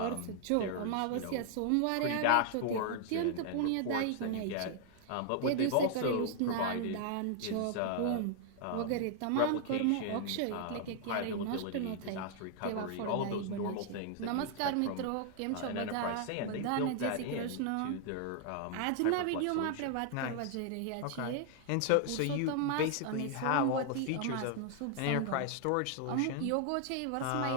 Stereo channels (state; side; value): different; both; correlation 0.00